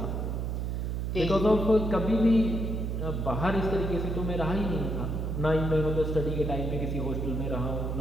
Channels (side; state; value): right; noise; hum, 1 dB below the sound